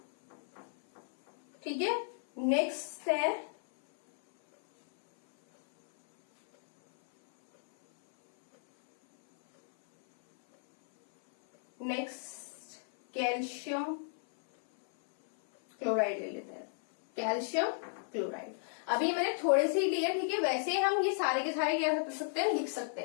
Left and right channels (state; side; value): silent; right; 56 dB below the other